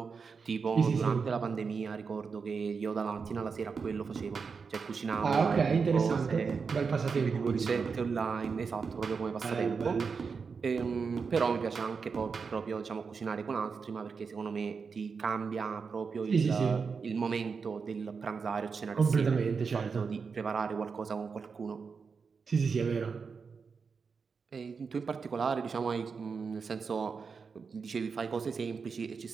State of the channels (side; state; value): left; quieter; 5.4 dB